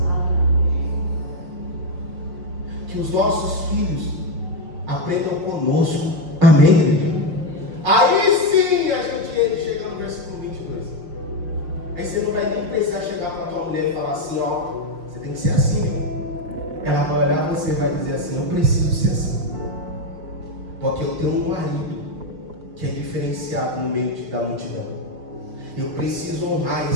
Que os nossos filhos aprendam conosco. Amém, igreja? Aí sim a gente chega no versículo 22. Aí você não vai nem precisar chegar para a tua mulher e falar assim: ó, você tem que ser assim, viu? Ela vai olhar para você e vai dizer assim: eu preciso ser assim. Porque eu tenho um marido que é diferenciado no meio da multidão. Eu preciso honrar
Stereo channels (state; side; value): late; left; 5.9 ms